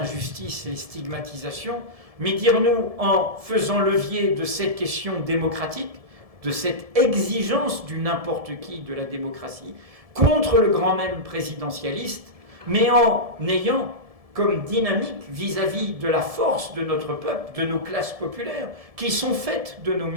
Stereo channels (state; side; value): late; left; 1.7 ms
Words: les stigmatisations, mais dire nous en faisant levier de cette question démocratique, de cette exigence du n'importe qui de la démocratie, contre le grand même présidentialiste, mais en ayant comme dynamique vis-à-vis de la force de notre peuple, de nos classes populaires, qui sont faites de nos